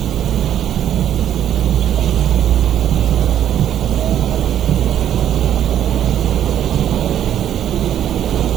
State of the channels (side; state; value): left; quieter; 10.5 dB